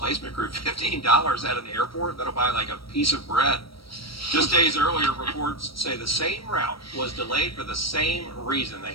crew. $15 at an airport, that'll buy like a piece of bread. Just days earlier, reports say the same route was delayed for the same reason. They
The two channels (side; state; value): right; late; 0.75 ms